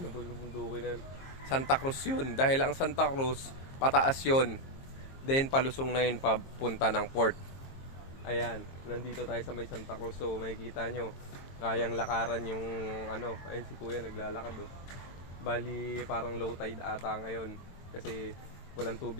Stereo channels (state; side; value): late; right; 22 ms